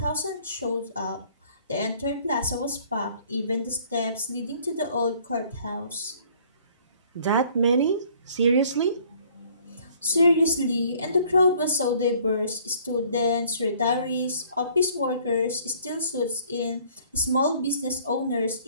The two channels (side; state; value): both; inverted; correlation -0.57